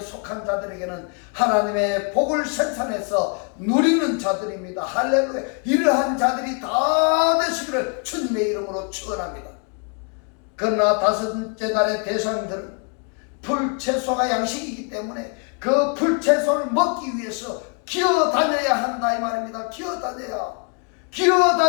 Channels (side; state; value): right; quieter; 37.7 dB